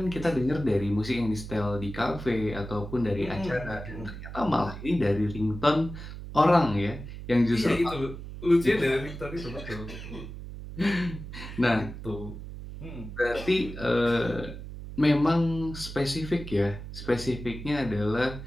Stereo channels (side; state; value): right; noise; hum, 11 dB below the sound